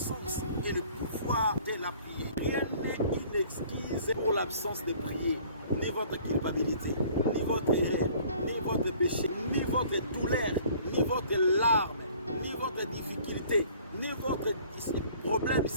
et le pouvoir de la prière. Rien n'est une excuse pour l'absence de prier. Ni votre culpabilité, ni votre erreur, ni votre péché, ni votre douleur, ni votre larme, ni votre difficulté, ni votre problème,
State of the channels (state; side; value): inverted; both; correlation -0.53